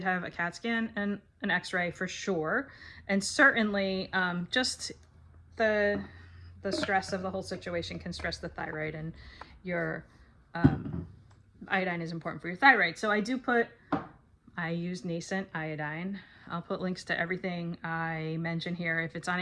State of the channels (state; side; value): identical; both; correlation 1.00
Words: have a CAT scan and an x-ray for sure. And certainly just the stress of the whole situation can stress the thyroid, and your iodine is important for your thyroid. So I use nascent iodine. I'll put links to everything I mention here. If it's on